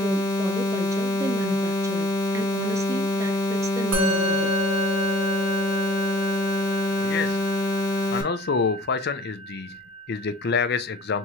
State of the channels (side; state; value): both; normal; correlation 0.49